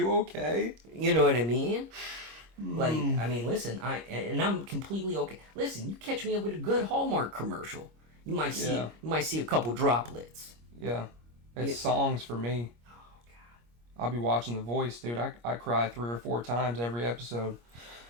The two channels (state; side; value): late; left; 25 ms